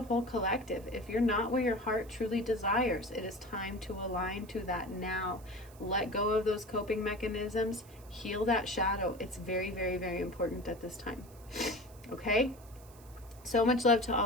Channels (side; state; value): right; noise; hiss, 24 dB below the sound